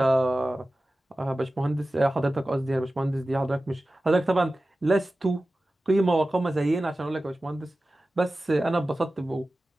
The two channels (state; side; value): normal; both; correlation 0.95